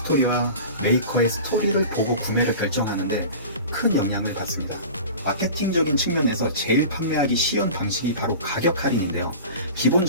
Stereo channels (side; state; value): both; inverted; correlation -0.36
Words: 메이커의 스토리를 보고 구매를 결정하는데 큰 영향을 받습니다. 마케팅적인 측면에서 제일 판매하기 쉬운 방식이 바로 가격 할인인데요.